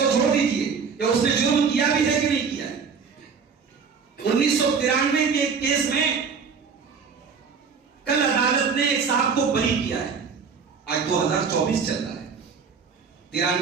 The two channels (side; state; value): left; quieter; 5.7 dB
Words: چھوڑ دیجئے کہ اس نے جرم کیا بھی ہے کہ نہیں کیا ہے۔ 1993 کے ایک کیس میں کل عدالت نے ایک صاحب کو بری کیا ہے، آج 2024 چل رہا ہے،